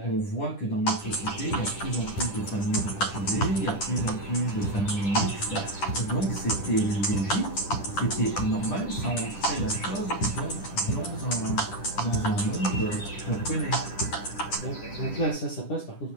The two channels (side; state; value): right; late; 10 ms